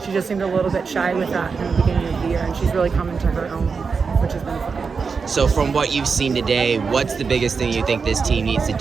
she just seemed a little bit shy with that in the beginning of the year, and she's really come into her own, which has been fun. So from what you've seen today, what's the biggest thing you think this team needs to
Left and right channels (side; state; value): left; quieter; 5.2 dB